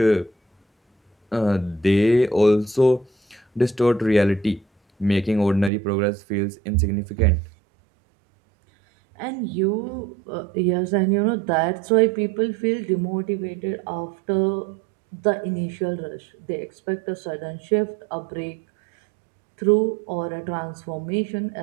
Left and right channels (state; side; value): drops out; left; at 5.7 s